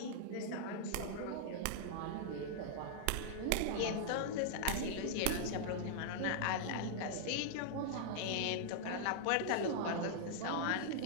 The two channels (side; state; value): both; different; correlation -0.01